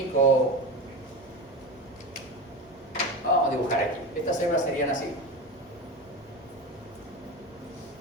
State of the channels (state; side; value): noise; left; hum, 29 dB below the sound